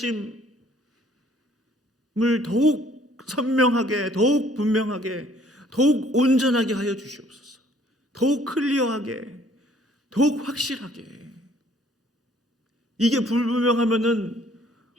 더욱 선명하게, 더욱 분명하게, 더욱 온전하게 하여 주시옵소서. 더욱 클리어하게, 더욱 확실하게. 이게 불분명하면은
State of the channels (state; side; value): normal; both; correlation 0.59